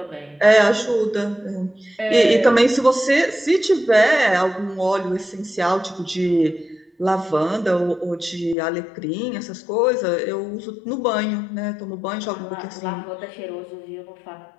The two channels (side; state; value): right; drops out; at 8.6 s